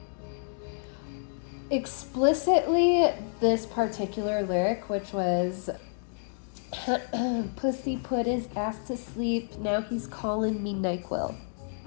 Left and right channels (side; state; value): right; silent; digital silence